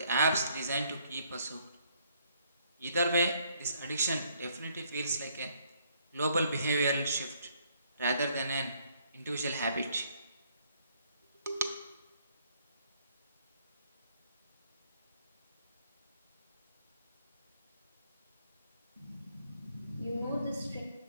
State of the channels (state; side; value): inverted; both; correlation -0.67